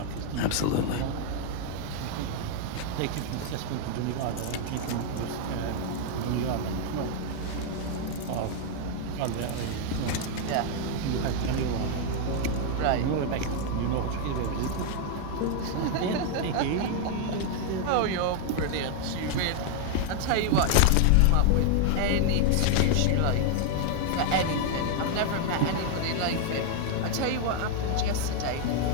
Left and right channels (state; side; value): different; both; correlation 0.00